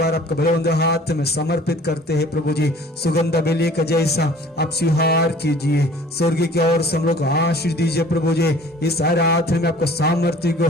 आपका बलवंत हाथ में समर्पित करते हैं प्रभु जी। सुगंध बेली का जैसा आप स्वीकार कीजिए, स्वर्ग की ओर से हम लोग आशीष आशीष दीजिए प्रभु जी। इस आराधना में आपको सामर्थ्य को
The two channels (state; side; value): normal; both; correlation 0.50